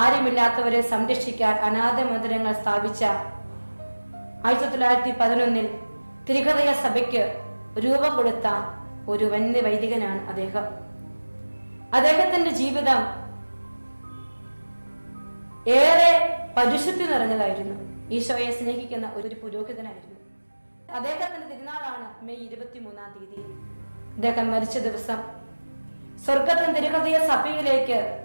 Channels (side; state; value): both; inverted; correlation -1.00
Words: സംരക്ഷിക്കാൻ അനാഥ മന്ദിരങ്ങൾ സ്ഥാപിച്ച 1911 തിരുഹൃദയ സഭയ്ക്ക് രൂപം കൊടുത്ത ഒരു വന്യ വൈദികനാണ് അദ്ദേഹം. അദ്ദേഹത്തിന്റെ ജീവിതം ഏറെ പരിശുദ്ധി നിറഞ്ഞതായിരുന്നു. ഈശോയെ സ്നേഹിക്കുന്ന ഒരു പുരോഹിതനായിരുന്നു. അദ്ദേഹത്തിന്റെ തിരുനാളാണ് മെയ് 23-ാം തീയതി. അദ്ദേഹം മരിച്ച ദിവസം സ്വർഗത്തിന് തിരുഹൃദയ സഭയിലേക്ക്